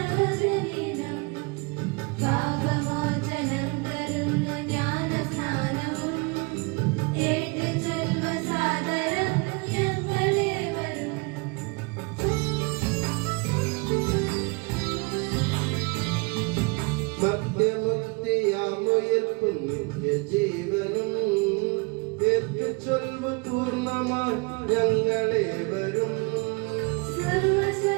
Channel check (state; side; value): quieter; left; 29.1 dB